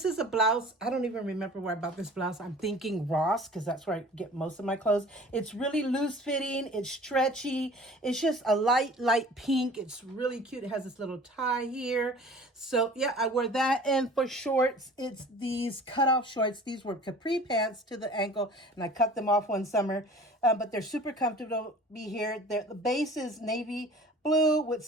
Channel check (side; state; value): both; normal; correlation 0.45